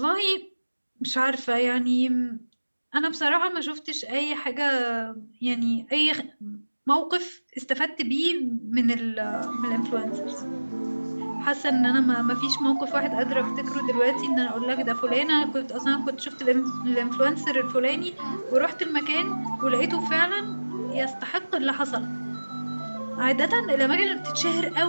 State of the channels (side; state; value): both; inverted; correlation -1.00